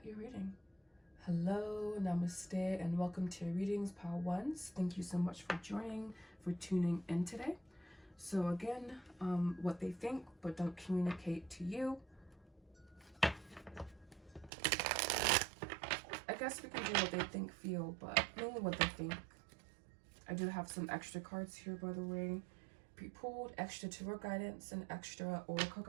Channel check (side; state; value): left; drops out; at 14.5 s